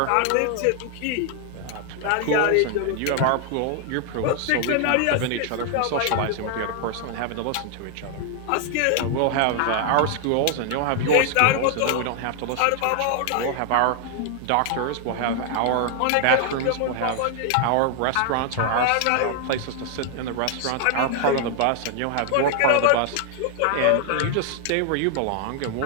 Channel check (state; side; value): different; both; correlation 0.00